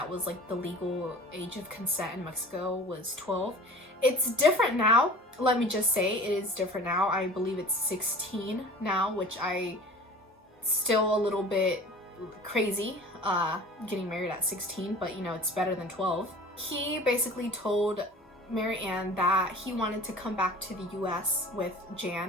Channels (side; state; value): both; normal; correlation 0.41